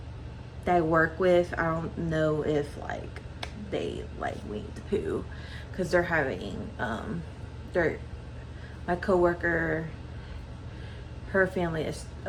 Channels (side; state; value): both; identical; correlation 1.00